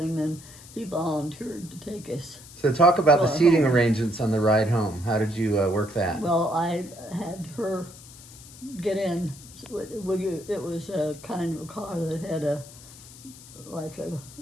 and he volunteered to take us. So talk about the Well, seating home. arrangements on the ride home. How did you work that? Well, I had her get in. It was a kind of a car that had like a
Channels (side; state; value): left; noise; hiss, 19 dB below the sound